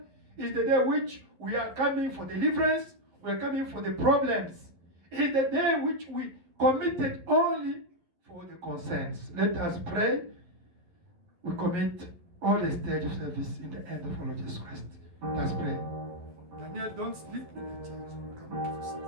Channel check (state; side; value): late; left; 11 ms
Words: It's the day which we are coming for deliverance. We are coming for the problems. It's the day which we committed only for the concerns. Let us pray. We commit all the stage of service in the hand of our Lord Jesus Christ. Let's pray. Daniel, don't sleep in the church. Come to